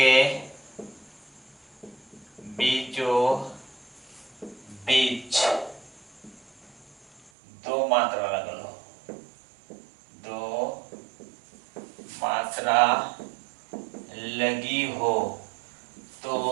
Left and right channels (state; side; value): drops out; left; at 7.3 s